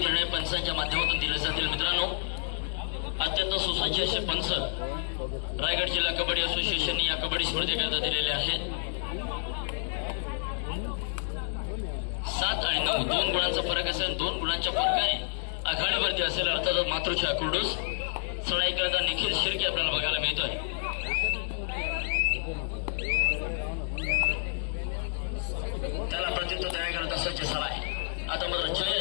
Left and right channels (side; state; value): right; silent; digital silence